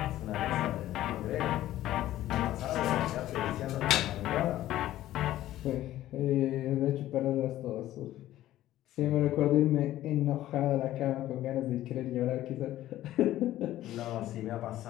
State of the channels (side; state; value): right; quieter; 14.1 dB